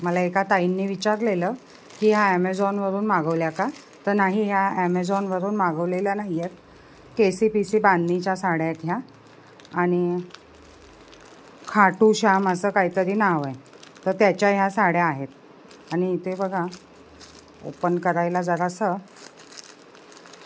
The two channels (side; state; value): both; identical; correlation 1.00